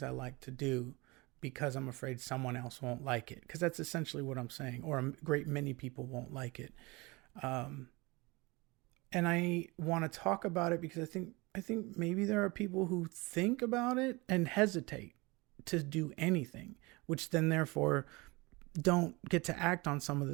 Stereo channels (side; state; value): left; quieter; 24.4 dB